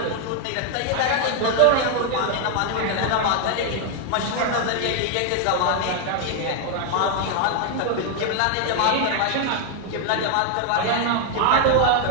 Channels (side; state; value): both; different; correlation 0.00